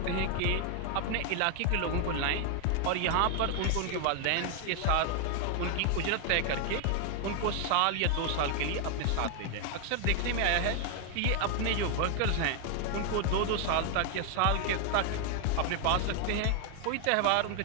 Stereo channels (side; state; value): both; different; correlation 0.00